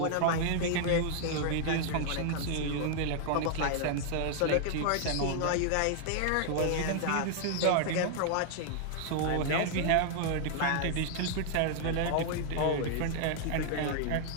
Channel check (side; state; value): both; different; correlation 0.00